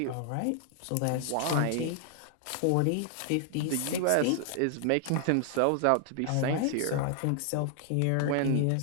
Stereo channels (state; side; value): different; both; correlation 0.00